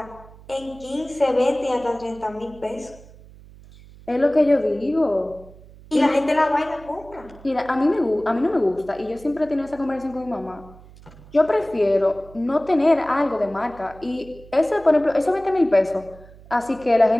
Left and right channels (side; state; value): right; noise; hum, 21 dB below the sound